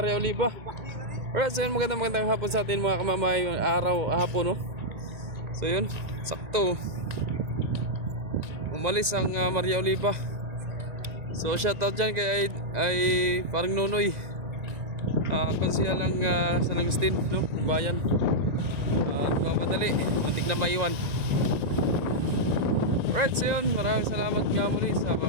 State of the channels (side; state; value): left; late; 1.9 ms